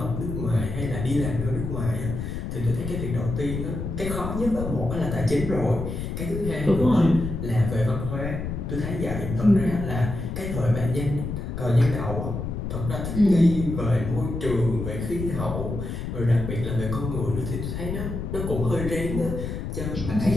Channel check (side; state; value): left; noise; rumble, 4 dB below the sound